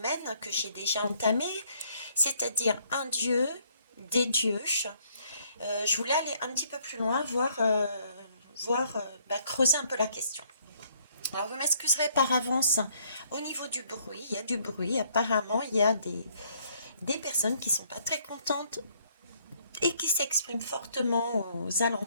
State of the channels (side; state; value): both; inverted; correlation -0.65